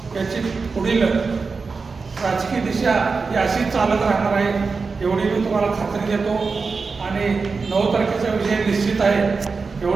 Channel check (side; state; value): left; quieter; 4.6 dB